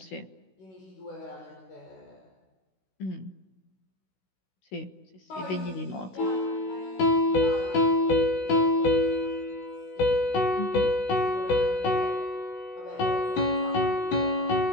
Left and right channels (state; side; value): late; right; 16 ms